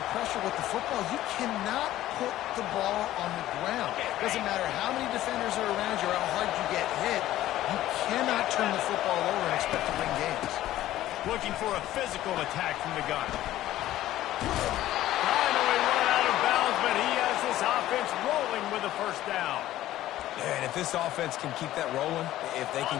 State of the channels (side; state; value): right; quieter; 14.2 dB